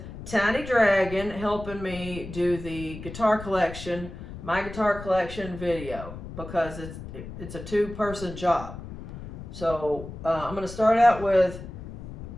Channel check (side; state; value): left; noise; rumble, 11 dB below the sound